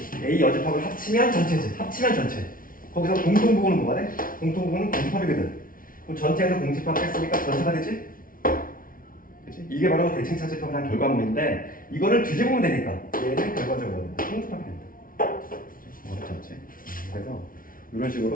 A 여집합을 합치면 전체지. 합치면 전체. 거기서 공통 부분은 뭐가 돼? 공통 부분은 공집합이거든. 그럼 전체에서 공집합 뺐으니까 전체가 되지? 그치? 이게 바로 대칭 차집합을 한 결과물인데 이거를 뒤집으면 되니까 얘는 결과적으로 공집합이 된다. 어렵지 않지? 그래서 이런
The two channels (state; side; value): late; right; 0.41 ms